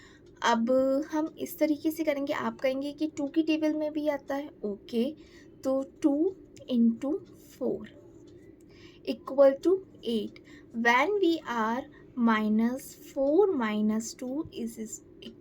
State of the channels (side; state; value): both; identical; correlation 1.00